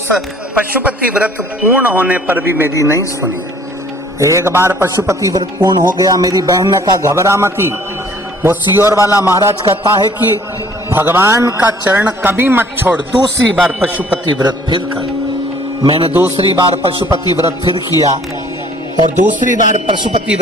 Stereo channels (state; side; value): normal; both; correlation 0.56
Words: पशुपति व्रत पूर्ण होने पर भी मेरी नहीं सुनी। एक बार पशुपति व्रत पूर्ण हो गया, मेरी बहन ने कहा घबरा मती। वो सियोर वाला महाराज कहता है कि भगवान का चरण कभी मत छोड़, दूसरी बार पशुपति व्रत फिर कर। मैंने दूसरी बार पशुपति व्रत फिर किया, और दूसरी बार पशुपति